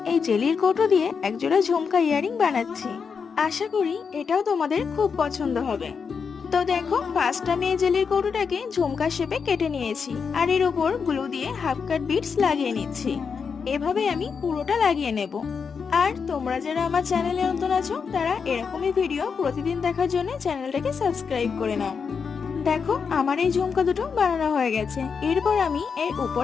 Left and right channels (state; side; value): quieter; right; 5.9 dB